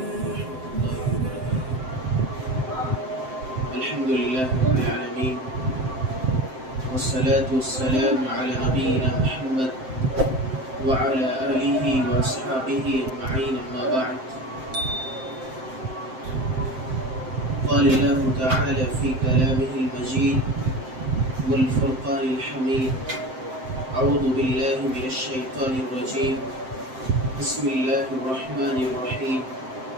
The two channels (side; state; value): left; late; 7.7 ms